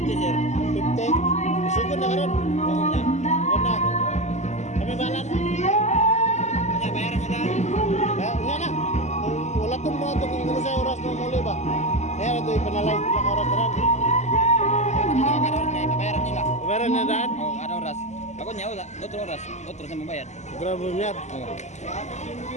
sir. 50? Sugod na karon. Sugod na. Kami balan. Kanya bayaran mo dahil. Nga na. Wala itong mga ito kung sa oras na muli ba? Kaya na ito ipanalay lang oras na rin. Karon kay bayaran nila. Bayaran na daan? Oh, ada oras. Ako niya wala, otro oras. Otro sa mabayad. Grabe mo yan. Oh.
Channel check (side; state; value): right; late; 0.33 ms